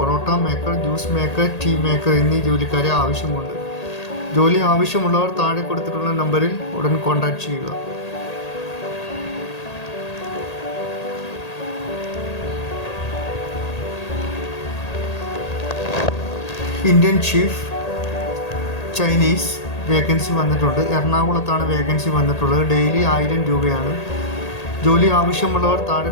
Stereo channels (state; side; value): late; right; 1.8 ms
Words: maker, juice maker, tea maker എന്നീ ജോലിക്കാരെ ആവശ്യമുണ്ട്. ജോലി ആവശ്യമുള്ളവർ താഴെ കൊടുത്തിട്ടുള്ള നമ്പറിൽ ഉടൻ കോൺടാക്ട് ചെയ്യുക. ഇന്ത്യൻ ഷീഫ് ചൈനീസ് വേക്കൻസി വന്നിട്ടുണ്ട്. എറണാകുളത്താണ് വേക്കൻസി വന്നിട്ടുള്ളത്. ഡെയിലി 1000 രൂപയാണ്. ജോലി ആവശ്യമുള്ളവർ താഴെ